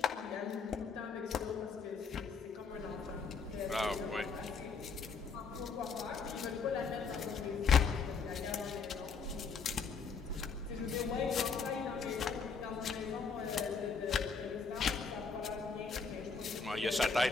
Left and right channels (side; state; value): right; quieter; 5.2 dB